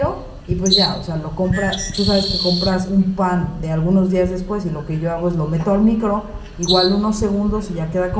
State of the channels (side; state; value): both; identical; correlation 1.00